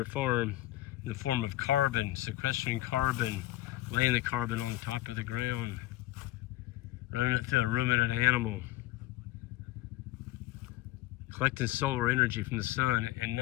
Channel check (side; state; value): right; quieter; 16.5 dB